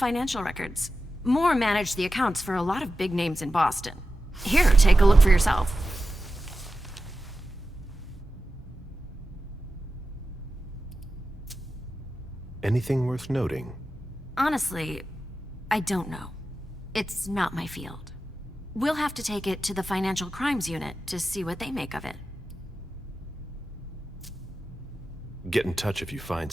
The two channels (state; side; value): normal; both; correlation 0.92